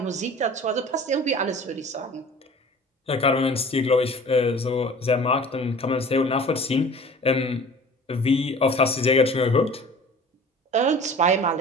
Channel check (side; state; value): both; normal; correlation 0.44